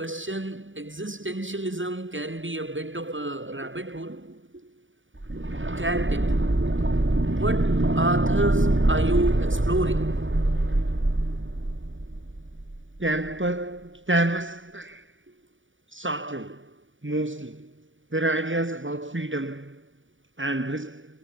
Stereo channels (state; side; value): late; left; 0.57 ms